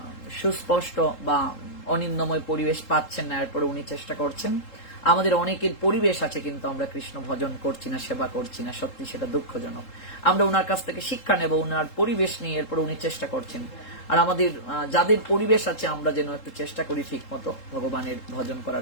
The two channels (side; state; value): right; late; 3.7 ms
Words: সুস্পষ্ট বা অনিন্দময় পরিবেশ পাচ্ছেন না, এরপরে উনি চেষ্টা করছেন। আমাদের অনেকের পরিবেশ আছে, কিন্তু আমরা কৃষ্ণ ভজন করছি না, সেবা করছি না, সত্যি সেটা দুঃখজনক। আমরা ওনার কাছ থেকে শিক্ষা নেব, ওনার পরিবেশ নিয়ে, এরপরে উনি চেষ্টা করছেন। আর আমাদের যাদের পরিবেশ আছে আমরা যেন একটু চেষ্টা করি ঠিক মতো ভগবানের ভজন